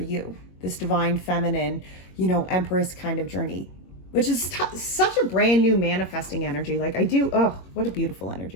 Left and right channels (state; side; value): late; right; 22 ms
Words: This divine feminine, you know, Empress kind of journey, which is such a brand new manifesting energy. Like oh, what a beautiful